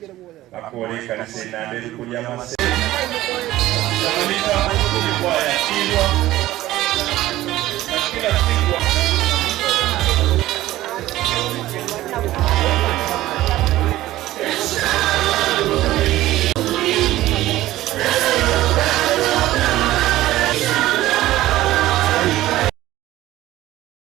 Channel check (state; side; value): quieter; left; 15.6 dB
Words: akore kanisa inandeli kulia Masese kila